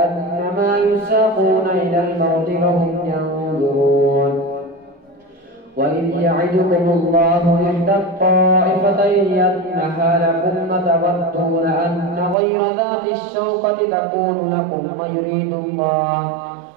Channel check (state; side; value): drops out; left; at 12.4 s